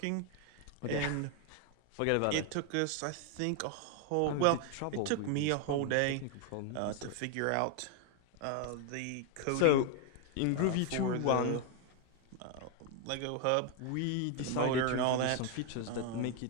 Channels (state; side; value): different; both; correlation 0.01